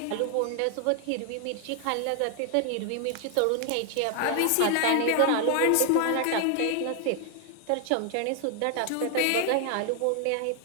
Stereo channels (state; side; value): different; both; correlation 0.00